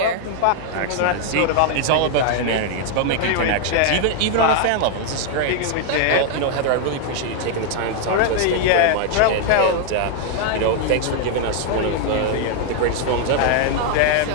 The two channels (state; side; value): different; both; correlation 0.00